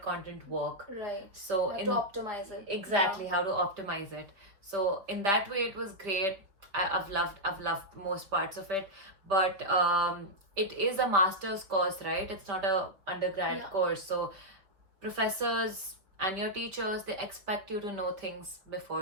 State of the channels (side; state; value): left; late; 5.2 ms